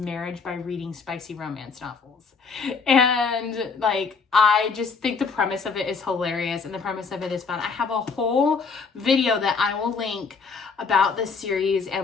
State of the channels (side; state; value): right; quieter; 5.0 dB